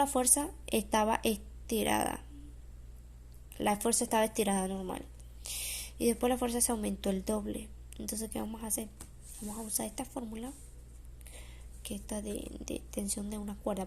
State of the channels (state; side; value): identical; both; correlation 1.00